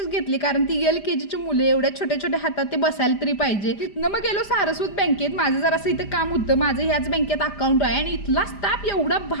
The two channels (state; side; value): late; right; 5.0 ms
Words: घेतले, कारण ती LKGची मुले एवढ्या छोट्या छोट्या हातात ते बसायला तरी पाहिजे. तिथनं मग गेलो सारस्वत बँकेत. माझं जरासं इथं काम होतं, माझं ह्याच बँकेत अकाउंट आहे आणि इथला स्टाफ एवढा